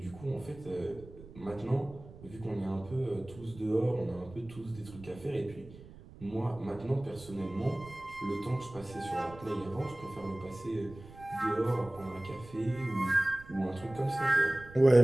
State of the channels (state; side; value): noise; right; rumble, 18 dB below the sound